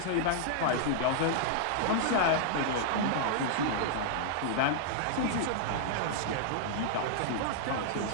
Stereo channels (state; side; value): different; both; correlation -0.01